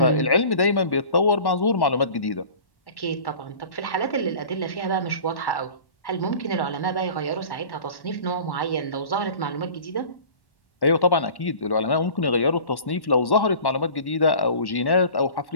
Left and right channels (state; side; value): late; right; 1.1 ms